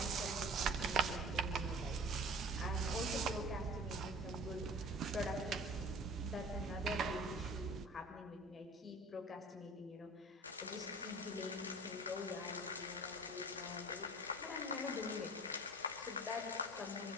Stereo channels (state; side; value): normal; both; correlation 0.44